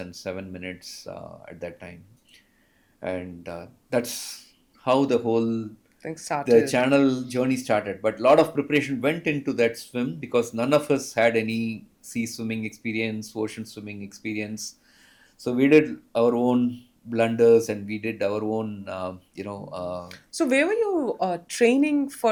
7 minutes at that time, and that's how Things the started. channel journey started. But a lot of preparation went into that swim because none of us had any sea swimming experience, ocean swimming experience. So we did our own blunders and we did our own, So where were you training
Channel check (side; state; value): both; identical; correlation 1.00